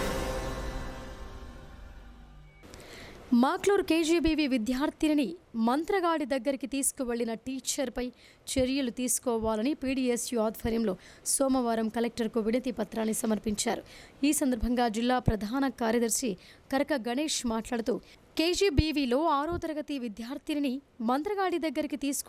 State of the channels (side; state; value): both; identical; correlation 1.00